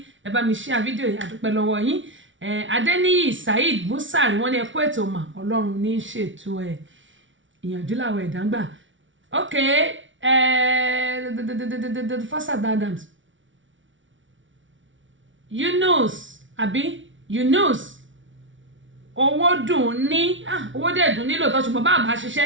ẹ bá mi share fídíò yìí adúpẹ́ lọ́wọ́ yín Adéníyì Saheed Busari wọn ni ẹkú ètò mà Ọlọ́run ní ṣètò ìyànjú làwọn ẹ̀dá ń gbà ok Afasas Adams Yunus owó dùn ní owó dẹ̀ dùn nílò tó ṣùgbọ́n bá àbá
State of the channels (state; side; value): late; left; 0.56 ms